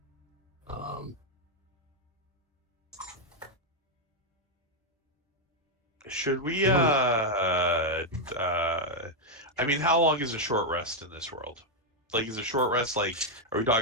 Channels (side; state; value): both; normal; correlation 0.00